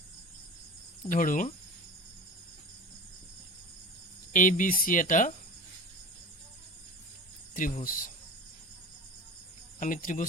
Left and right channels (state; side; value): normal; both; correlation 0.33